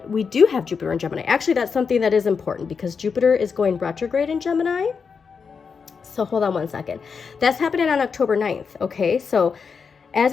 we do have Jupiter in Gemini. Actually, that's something that is important because Jupiter is going retrograde in Gemini. So hold on one second. That's happening on October 9th. Okay, so as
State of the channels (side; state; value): right; quieter; 5.7 dB